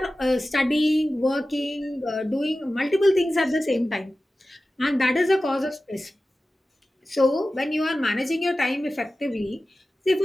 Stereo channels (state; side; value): normal; both; correlation 0.95